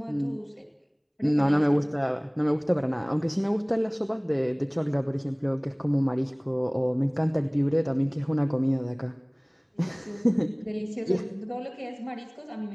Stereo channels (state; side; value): identical; both; correlation 1.00